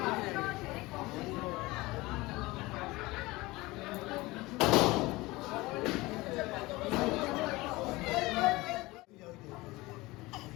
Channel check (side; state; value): right; quieter; 21.1 dB